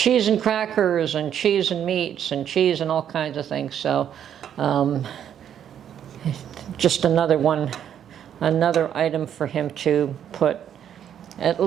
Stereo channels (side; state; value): left; quieter; 9.5 dB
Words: and crackers and cheese and meats and cheese and all kinds of things. So just another item for him to put at